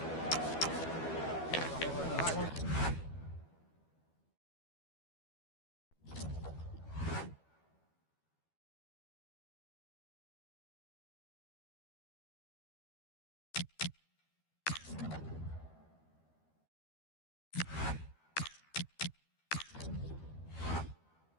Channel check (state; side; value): late; right; 12 ms